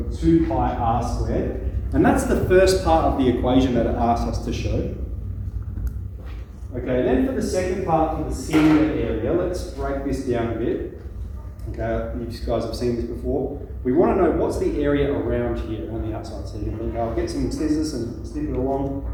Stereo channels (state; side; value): identical; both; correlation 1.00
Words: 2 pi r squared, and that's the first part of the equation that it asks us to show. Okay, then for the second part, for the cylinder area, let's break this down a bit. Okay, you guys have seen this before. We want to know what's the area around here, on the outside. So you can think, I'll get some scissors and snip it along,